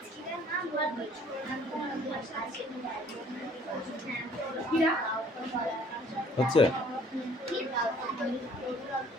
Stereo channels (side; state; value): both; normal; correlation 0.56